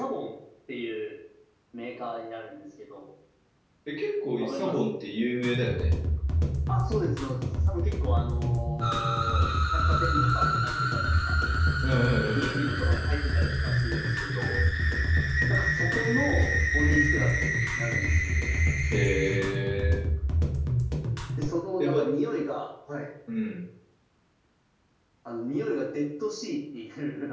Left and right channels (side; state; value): both; identical; correlation 1.00